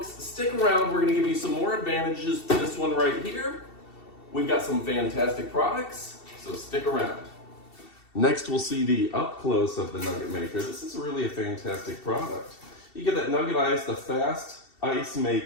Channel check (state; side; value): late; right; 2.7 ms